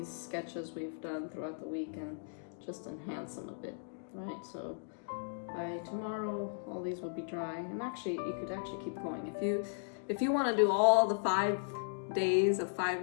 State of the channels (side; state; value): right; silent; digital silence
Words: sketches we've done throughout the week and just enhance them a bit, right? So by tomorrow, all these will be dry. And actually, you could actually keep going. If you want to do all the 5 days of 5